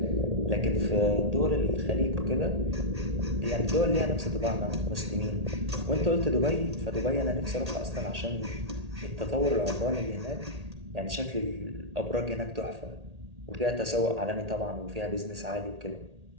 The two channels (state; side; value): late; left; 1.8 ms